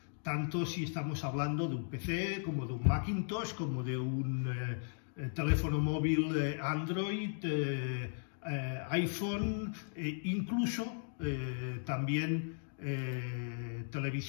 Tanto si estamos hablando de un PC, como de un Macintosh, como de un teléfono móvil Android, iPhone, incluso también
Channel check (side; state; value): right; silent; digital silence